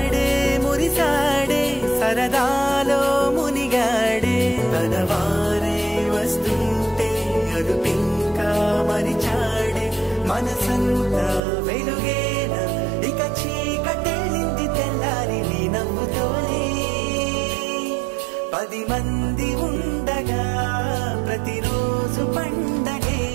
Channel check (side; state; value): left; drops out; at 11.4 s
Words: మురిసాడే సరదాలో మునిగాడే తనవారే వస్తుంటే అదుపింకా మరిచాడే మనసంతా వెలుగేన ఇక చీకటెళ్ళింది తెల్లారి నీ నవ్వుతోనే 10 మంది ఉండగా ప్రతిరోజు పండగే